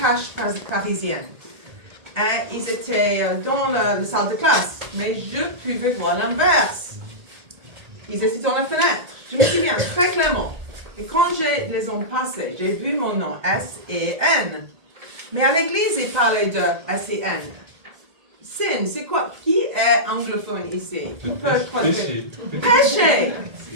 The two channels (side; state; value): left; late; 1.8 ms